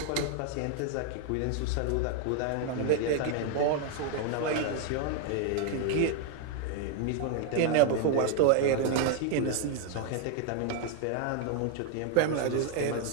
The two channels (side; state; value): both; different; correlation 0.00